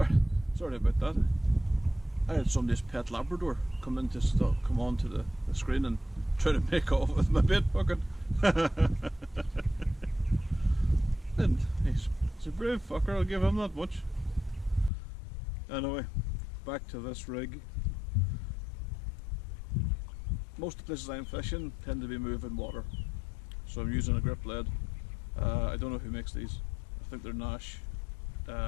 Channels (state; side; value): drops out; right; at 14.9 s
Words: about that. I had somebody's pet Labrador come onto the screen and try to make off with my bait bucket. And he's a brave fucker, I'll give him that much. Anyway, back to this rig. Most of the places I'm fishing tend to be moving water, so I'm using a grip lead. I don't know who makes these. I think they're Nash